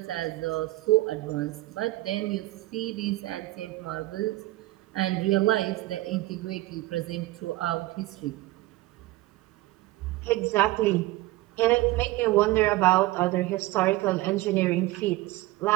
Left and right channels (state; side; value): quieter; left; 18.5 dB